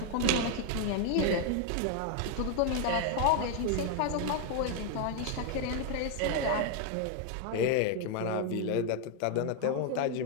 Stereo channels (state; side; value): different; both; correlation 0.00